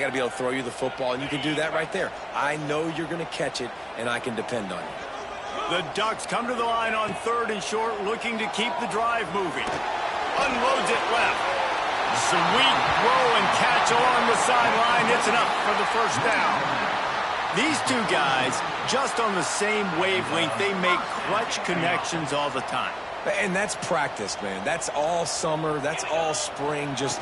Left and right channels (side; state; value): both; identical; correlation 1.00